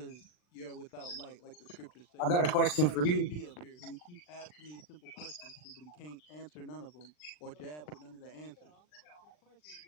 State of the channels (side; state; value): right; late; 40 ms